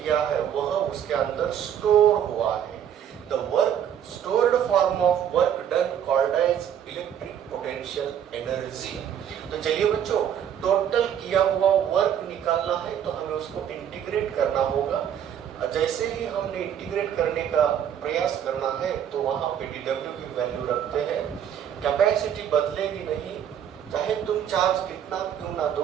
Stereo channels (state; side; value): quieter; left; 9.3 dB